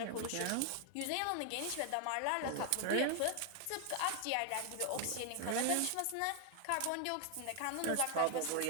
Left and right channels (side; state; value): both; different; correlation 0.00